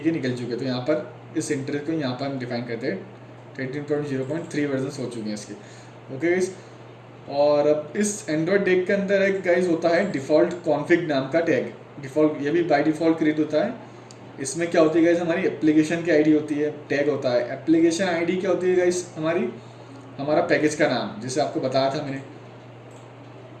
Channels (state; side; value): identical; both; correlation 1.00